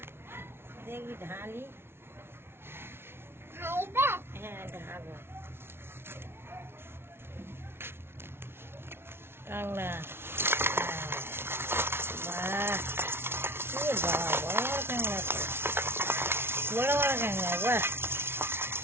দেখি ঢালি। হ্যাঁ ঢালবো। কাংলা বাহ, বড় বড় কাংলা, বড় বড় কাংলা বাহ।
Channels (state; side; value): late; left; 0.12 ms